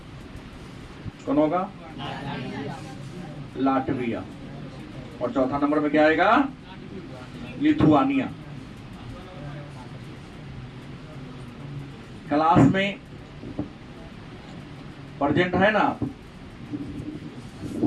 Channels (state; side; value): identical; both; correlation 1.00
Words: कौन होगा, लाटविया। और चौथा नंबर में क्या आएगा, लिथुआनिया। क्लास में प्रेजेंट है ना आप,